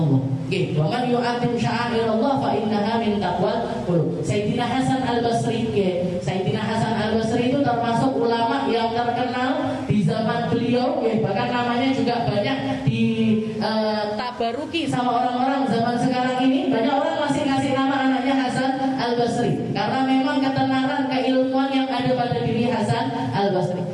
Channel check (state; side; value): identical; both; correlation 1.00